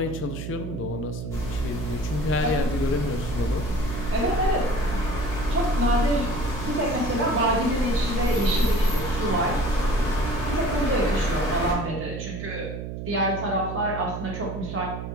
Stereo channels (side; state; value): right; noise; hum, 7 dB below the sound